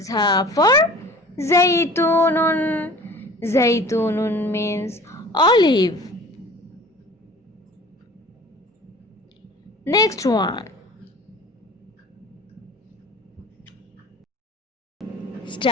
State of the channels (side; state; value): both; normal; correlation 0.44